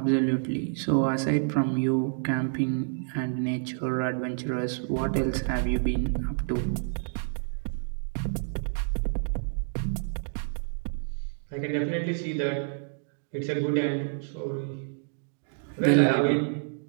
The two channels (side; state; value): left; silent; digital silence